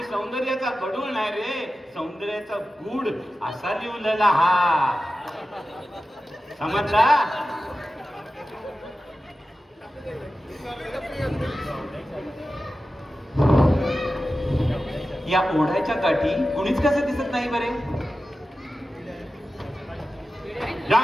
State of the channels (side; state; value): both; normal; correlation 0.93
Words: सौंदर्याचा गडूळ नाही रे, सौंदर्याचा गूढ असा लिवलेला हा, समजला? या ओढ्याच्या काठी कुणीच कसं दिसत नाही बरे. या